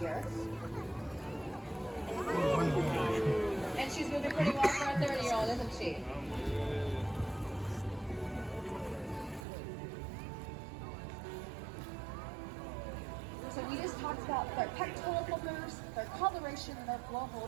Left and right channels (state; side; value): drops out; left; at 9.5 s